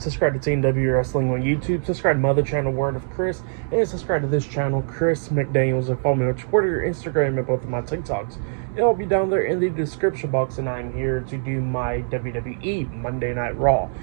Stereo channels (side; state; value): left; silent; digital silence